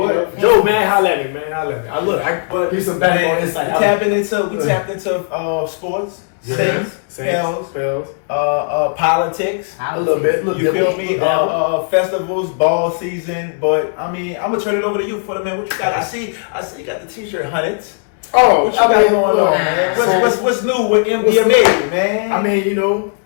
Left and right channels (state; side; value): silent; right; 65 dB below the other